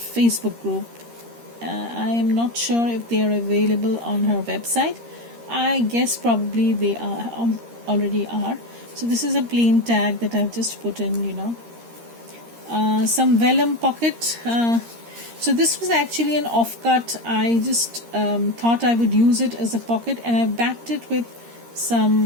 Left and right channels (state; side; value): late; left; 13 ms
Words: group. I am not sure if they are available on her website. I guess probably they are, already are. So this is a plain tag that I've just put in, you know. Some vellum pocket. So this was actually an offcut. I just thought I would use it as a pocket, and I backed it with